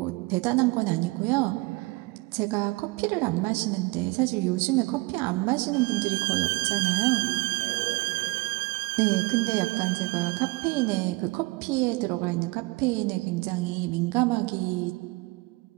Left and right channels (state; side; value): quieter; left; 24.5 dB